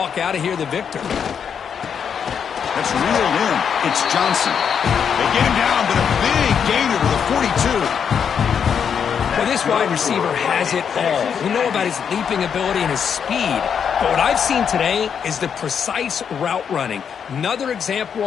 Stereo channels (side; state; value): right; quieter; 7.4 dB